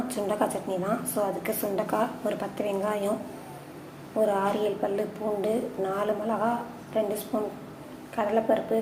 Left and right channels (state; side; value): identical; both; correlation 1.00